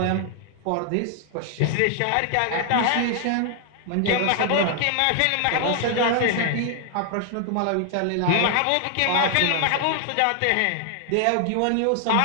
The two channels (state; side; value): different; both; correlation 0.00